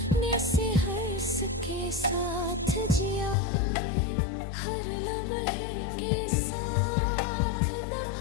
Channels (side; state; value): right; drops out; at 3.4 s